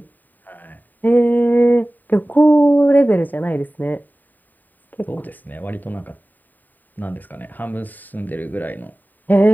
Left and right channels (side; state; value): right; late; 0.087 ms